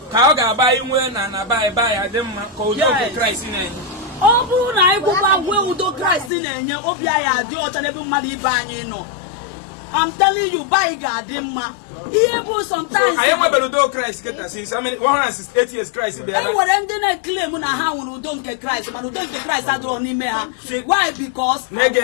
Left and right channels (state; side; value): drops out; right; at 6.3 s